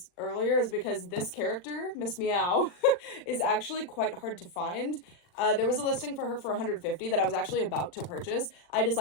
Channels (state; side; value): late; right; 40 ms